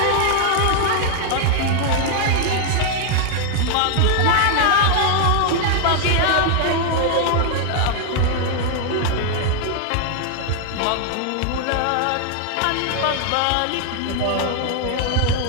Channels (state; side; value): different; both; correlation 0.00